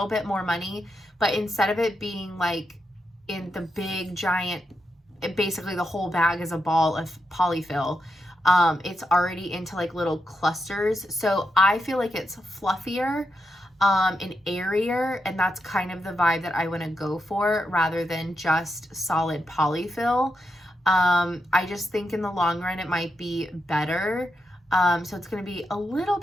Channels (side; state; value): both; normal; correlation 0.85